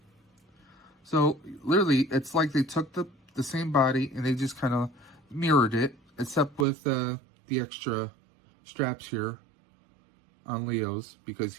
So, literally, it's like they took the same body and they just kind of mirrored it. Except with the extra straps here on Leo's, because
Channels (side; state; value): left; drops out; at 6.7 s